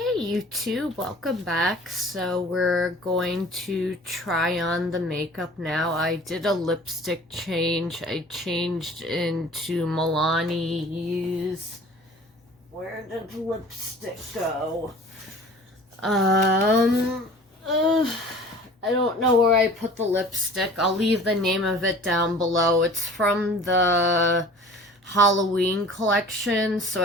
Hi YouTube, welcome back. So we're going to try on the makeup now. I did a lipstick change. I changed into Milani's. Where did the lipstick go? I don't know where I put the lipstick. I'll leave the name of it down below. It's from the Halloween collection, so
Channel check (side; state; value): both; normal; correlation 0.45